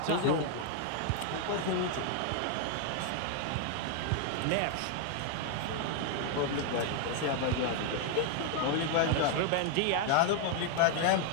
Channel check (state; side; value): different; both; correlation 0.00